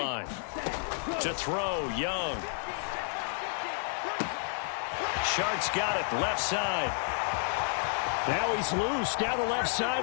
To throw, Young. Shark's got it, left side. Now he's loose down the left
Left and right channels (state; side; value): silent; right; 57 dB below the other